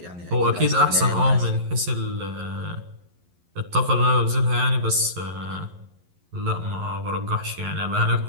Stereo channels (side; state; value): left; late; 11 ms